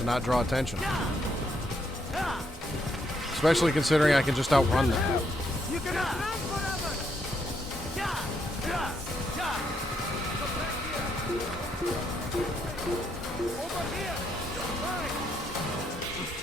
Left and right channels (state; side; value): normal; both; correlation 0.75